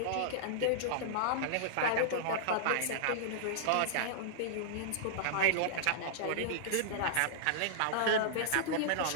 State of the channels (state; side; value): different; both; correlation -0.01